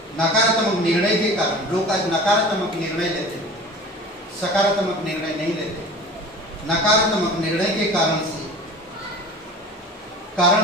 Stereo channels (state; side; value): normal; both; correlation 0.39